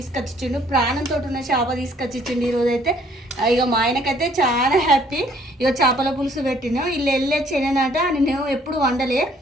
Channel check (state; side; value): normal; both; correlation 0.62